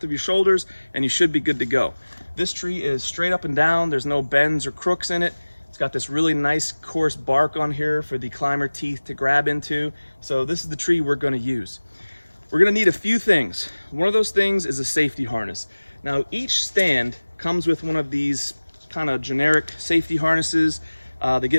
of your shoulders and you should be good to go. This tree is straight up and down, there's no bends or crooks in it. It's got this really nice coarse bark on here for the climber teeth to grab into. So this is the tree we're going to use. We're going to need a few things. One of those things is a safety harness. Now each stand comes with one of these kind of generic safety harnesses. They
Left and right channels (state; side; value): inverted; both; correlation -1.00